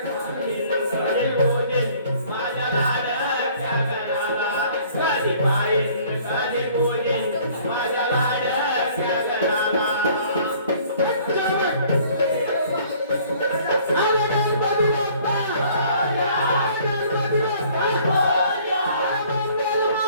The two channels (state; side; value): inverted; both; correlation -0.56